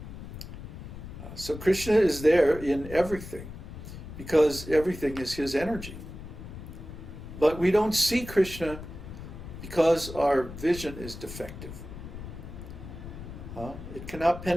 So Kṛṣṇa is there in everything because everything is his energy. But we don't see Kṛṣṇa because our vision is defective. It cannot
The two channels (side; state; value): left; noise; rumble, 11 dB below the sound